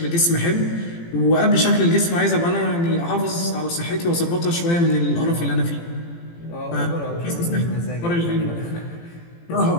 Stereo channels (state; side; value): late; right; 18 ms